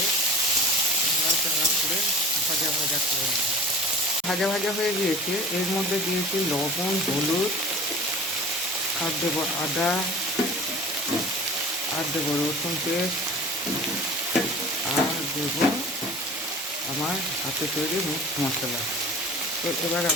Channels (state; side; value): normal; both; correlation 0.40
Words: ভাজা ভাজা করে নেব। ভাজা ভাজা হয়ে গিয়েছে। এর মধ্যে দিয়েছি লবণ, হলুদ, আর দেবো আদা, আর দেবো রসুন পেস্ট, আর দেবো আমার হাতে তৈরি মিক্স মশলা। তো এবার